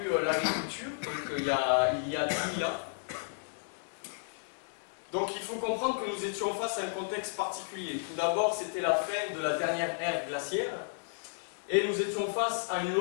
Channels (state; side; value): silent; right; digital silence